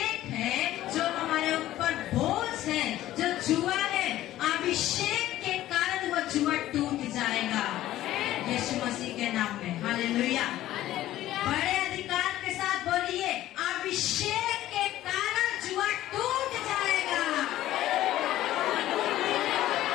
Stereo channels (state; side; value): quieter; right; 14.2 dB